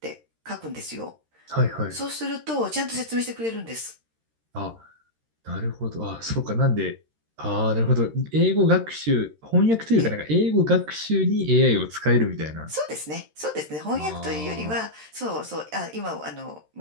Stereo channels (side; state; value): left; late; 13 ms